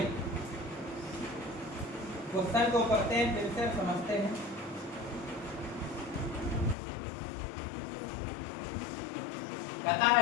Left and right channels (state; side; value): drops out; right; at 6.8 s